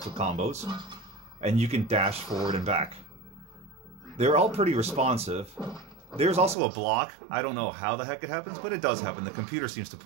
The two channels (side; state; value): left; drops out; at 6.6 s